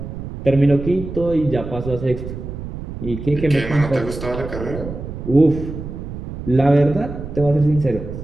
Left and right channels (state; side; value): noise; right; rumble, 9 dB below the sound